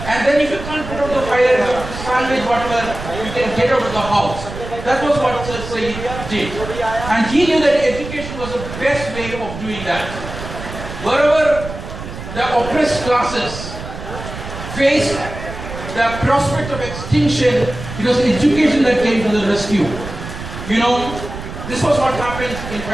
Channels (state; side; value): noise; right; rumble, 10 dB below the sound